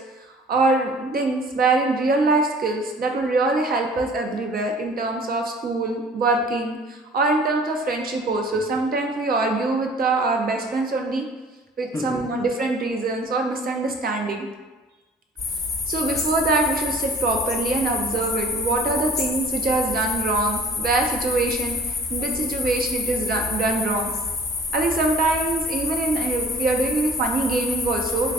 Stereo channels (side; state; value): both; normal; correlation 0.49